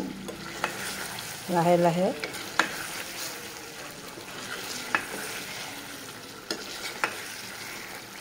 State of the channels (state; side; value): identical; both; correlation 1.00